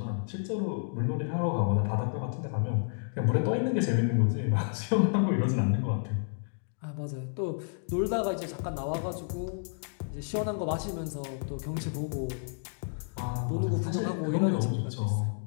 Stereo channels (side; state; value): right; silent; digital silence